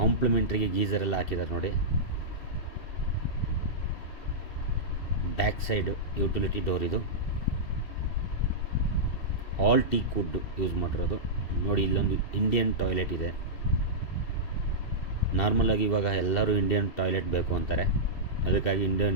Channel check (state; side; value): late; right; 2.7 ms